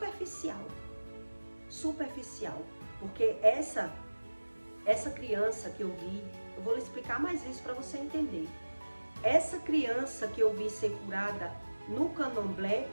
porque essa criança que eu vi, eu vou lhe explicar mais isso para você entender. Essa criança que eu vi ser curada no candomblé,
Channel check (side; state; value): both; inverted; correlation -1.00